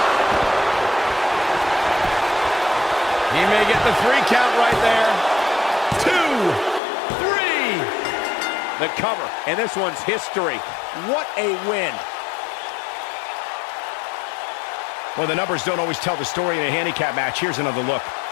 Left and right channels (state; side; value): drops out; right; at 6.8 s